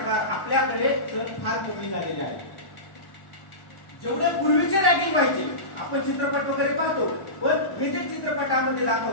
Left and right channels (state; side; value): late; right; 1.1 ms